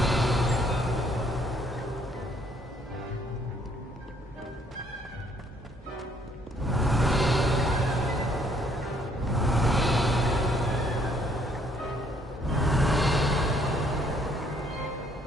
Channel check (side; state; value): both; normal; correlation 0.65